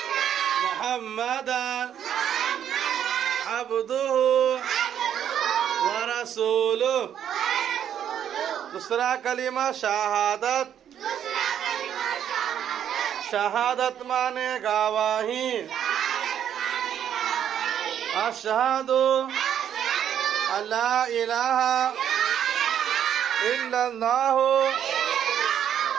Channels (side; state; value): left; quieter; 9.6 dB